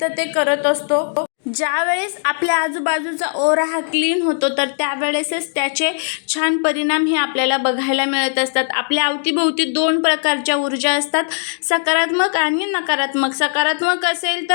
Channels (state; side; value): silent; right; digital silence